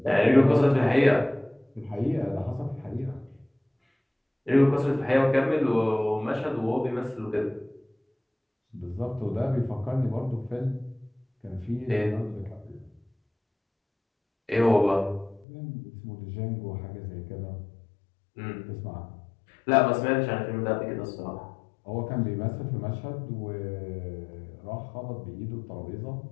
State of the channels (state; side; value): drops out; right; at 15.5 s